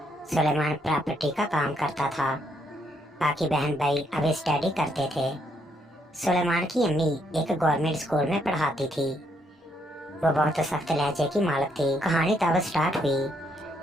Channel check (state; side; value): normal; both; correlation 0.73